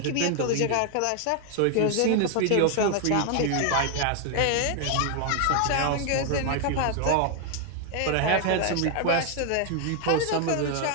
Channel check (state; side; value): different; both; correlation 0.00